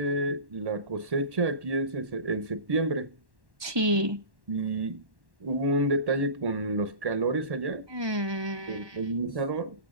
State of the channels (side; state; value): left; late; 1.1 ms